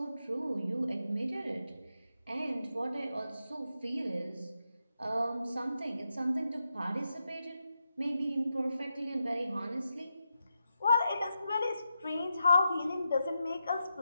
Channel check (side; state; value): both; inverted; correlation -0.86